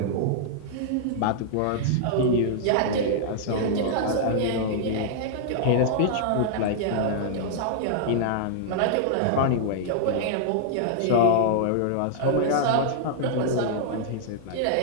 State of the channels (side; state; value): both; different; correlation -0.01